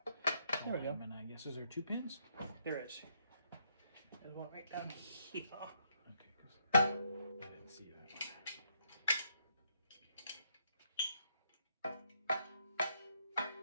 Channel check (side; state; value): both; inverted; correlation -0.74